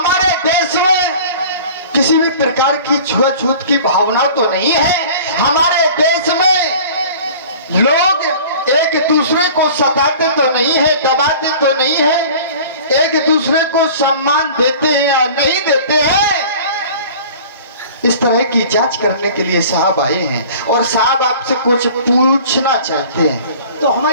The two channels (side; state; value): both; inverted; correlation -0.43